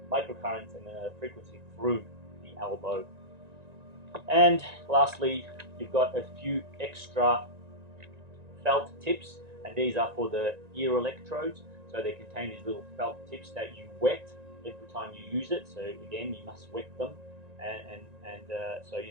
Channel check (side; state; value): left; late; 1.9 ms